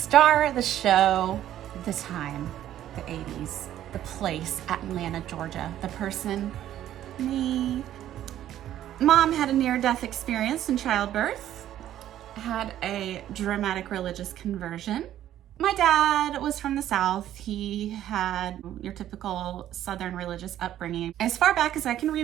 of the show, the time, the 80s, the place, Atlanta, Georgia, the person, me. Mom had a near-death experience in childbirth, had a dramatic religious conversion. My dad was from the South. He had your typical Southern religious upbringing. As far back as I can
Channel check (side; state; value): left; quieter; 12.0 dB